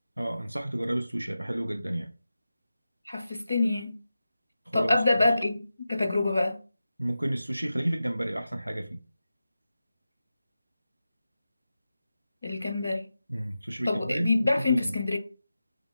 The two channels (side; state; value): both; inverted; correlation -0.92